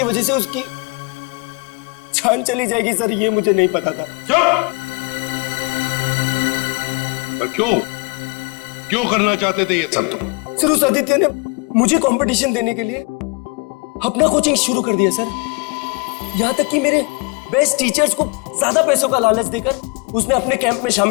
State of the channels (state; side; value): quieter; right; 30.3 dB